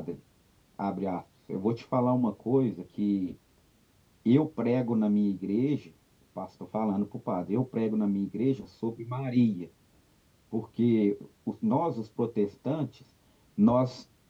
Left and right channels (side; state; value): both; identical; correlation 1.00